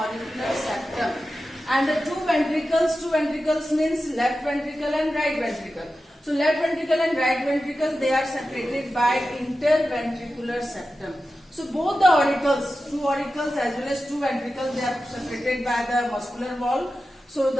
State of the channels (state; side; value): normal; both; correlation 0.92